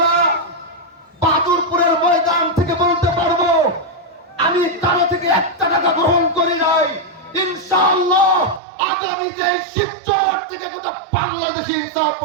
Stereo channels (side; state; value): left; drops out; at 8.6 s